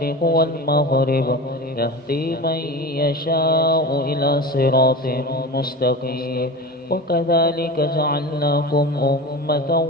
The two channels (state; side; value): normal; both; correlation 0.30